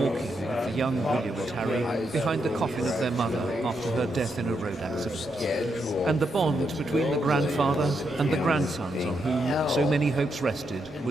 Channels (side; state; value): both; normal; correlation 0.81